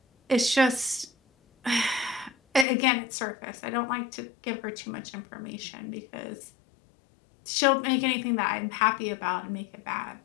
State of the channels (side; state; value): right; drops out; at 2.7 s